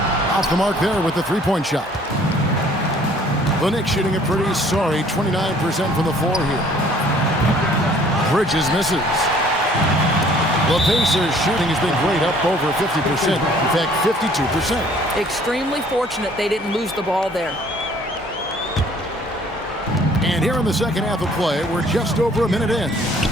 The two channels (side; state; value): both; normal; correlation 0.57